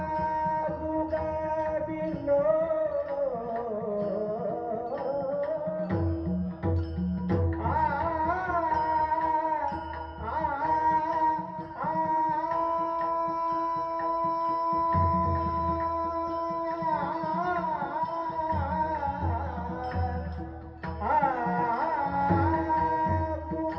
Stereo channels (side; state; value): both; identical; correlation 1.00